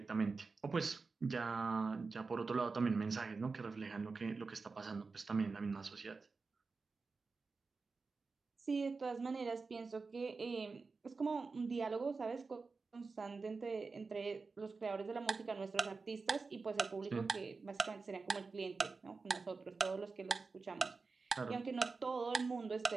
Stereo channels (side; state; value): left; quieter; 4.3 dB